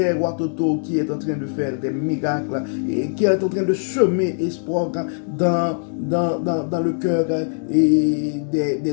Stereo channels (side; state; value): right; silent; digital silence